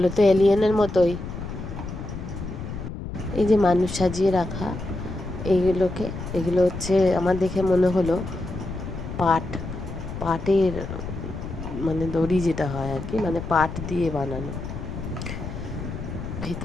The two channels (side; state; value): left; noise; rumble, 8 dB below the sound